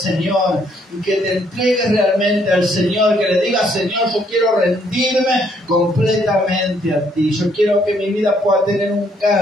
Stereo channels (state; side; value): normal; both; correlation 0.68